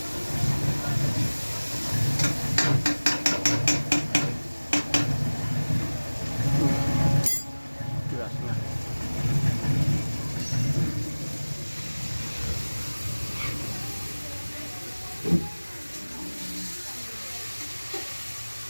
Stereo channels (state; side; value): inverted; both; correlation -1.00